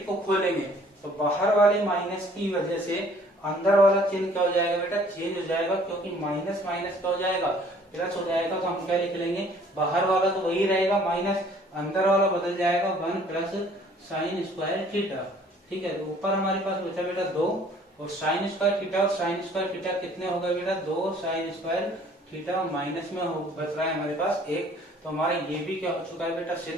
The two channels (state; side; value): normal; both; correlation 0.56